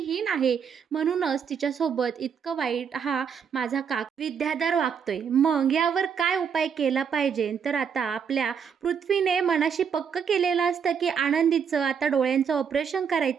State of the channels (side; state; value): left; quieter; 7.0 dB